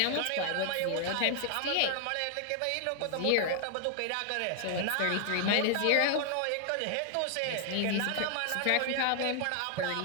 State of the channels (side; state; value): both; different; correlation 0.00